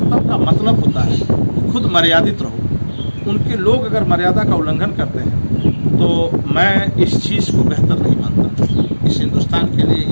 का मतलब होता है खुद मर्यादित रहो। उनके लोग अगर मर्यादा का उल्लंघन करते हैं तो मैं इस चीज़ को बेहतर नहीं मानता, इस हिंदुस्तान के लिए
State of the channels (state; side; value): inverted; both; correlation -1.00